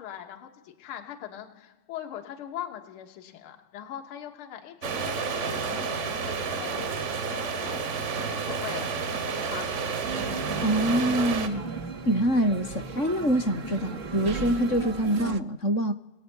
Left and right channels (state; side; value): late; right; 3.5 ms